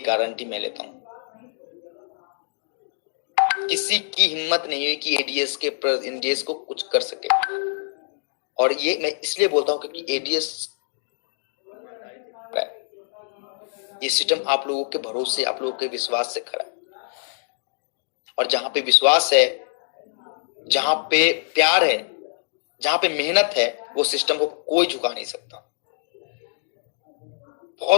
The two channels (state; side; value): silent; right; digital silence